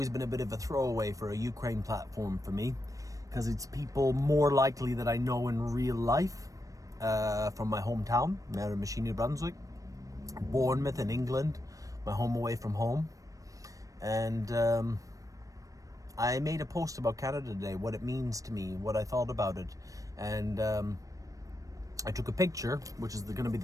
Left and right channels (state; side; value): late; left; 0.16 ms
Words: been a bit of a throwaway for a Ukraine platform for me, because it's people more likely that I know in real life, from my hometown, Miramichi, New Brunswick, Bournemouth in England, my home away from home. And I made a post about Canada Day, what it means to me, what I thought about it. And I took a picture, which is going to be